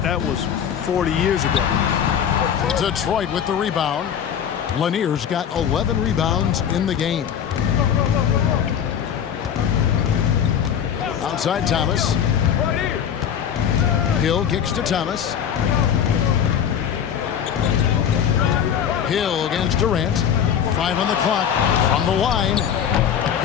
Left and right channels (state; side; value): quieter; right; 8.6 dB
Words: that was 40 years ago. Detroit with the rebound. Lanier's got 11 rebounds in the game. Outside Thomas. Hill kicks to Thomas. Hill against Durant. 5 on the clock. From the line.